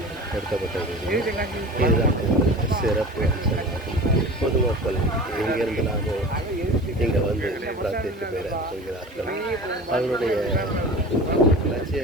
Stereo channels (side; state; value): both; normal; correlation 0.36